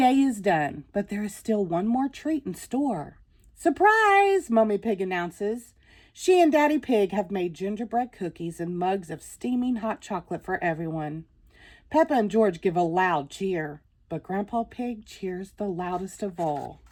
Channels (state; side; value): identical; both; correlation 1.00